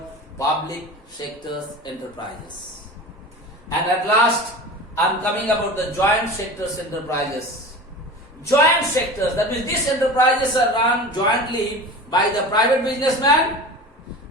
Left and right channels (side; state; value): both; normal; correlation 0.34